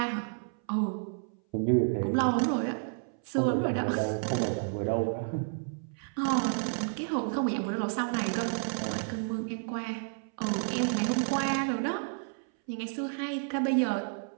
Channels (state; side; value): silent; left; 57 dB below the other